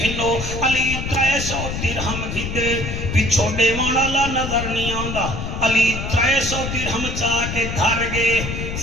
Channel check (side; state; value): left; noise; rumble, 5 dB below the sound